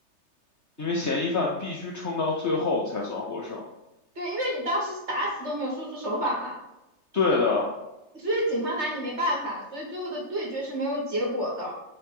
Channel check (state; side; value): late; left; 3.3 ms